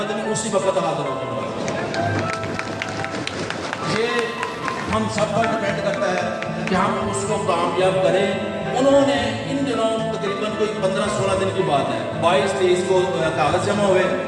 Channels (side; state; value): both; identical; correlation 1.00